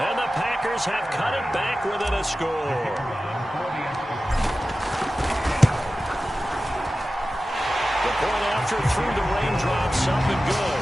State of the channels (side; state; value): both; normal; correlation 0.95